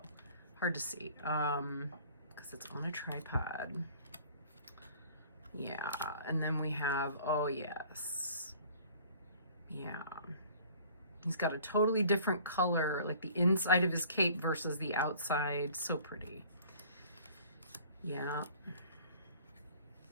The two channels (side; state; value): both; inverted; correlation -0.50